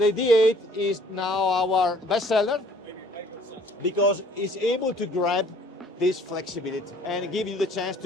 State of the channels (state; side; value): normal; both; correlation 0.57